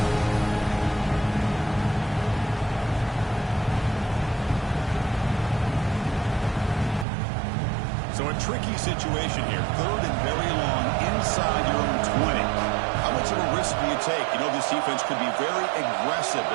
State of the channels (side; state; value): left; drops out; at 7.1 s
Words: So a tricky situation here. Third and very long inside your own 20. How much of a risk do you take? You know this defense could be very aggressive